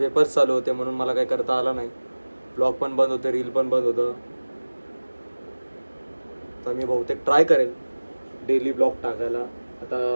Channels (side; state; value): both; inverted; correlation -1.00